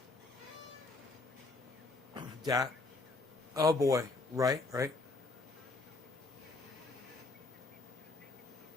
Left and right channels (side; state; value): right; quieter; 3.3 dB